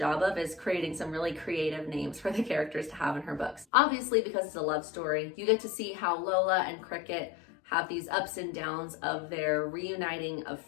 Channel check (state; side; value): drops out; right; at 3.7 s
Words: of, is creating some really creative names for the characters to have in her books. Obviously, because it's a love story, you get to see how Lola and Cricket have these ups and downs of their reuniting of